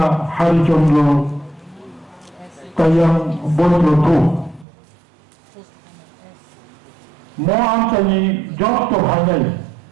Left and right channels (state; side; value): drops out; left; at 4.7 s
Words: হরিচন্দ্র কায়াং বৈদ্যথু মো আঞ্চলিক যত ভাইনাই